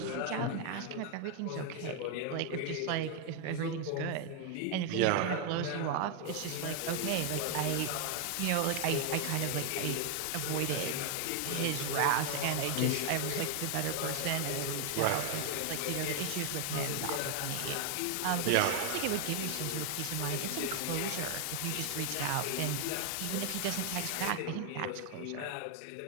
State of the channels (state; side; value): different; both; correlation 0.00